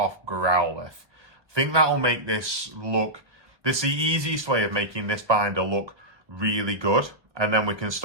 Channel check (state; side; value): late; left; 1.2 ms